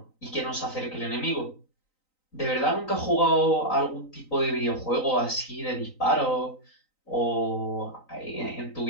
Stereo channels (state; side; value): late; right; 3.9 ms